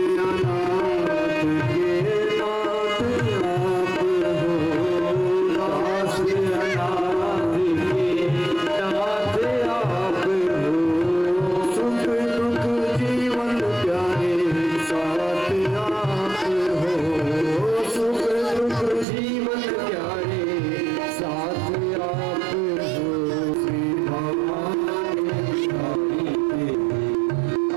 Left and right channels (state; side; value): drops out; left; at 19.1 s